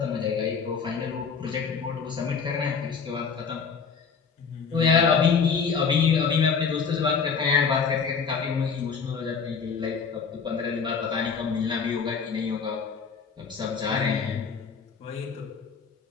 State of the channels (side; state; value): right; quieter; 5.8 dB